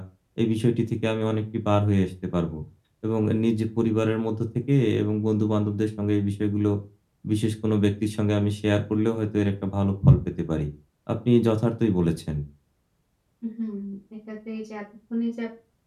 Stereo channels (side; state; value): both; identical; correlation 1.00